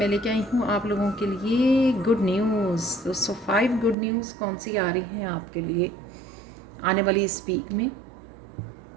लेके आई हूँ आप लोगों के लिए गुड न्यूज़। दोस्तों 5 गुड न्यूज़ कौन सी आ रही हैं आपके लिए आने वाली इस वीक में।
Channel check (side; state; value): left; drops out; at 4.0 s